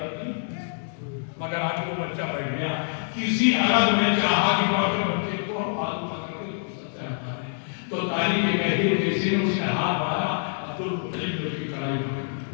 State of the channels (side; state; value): right; silent; 61 dB below the other